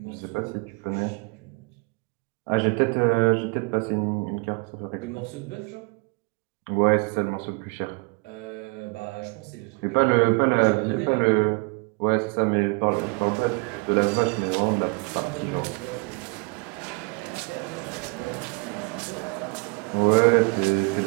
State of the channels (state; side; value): quieter; left; 31.1 dB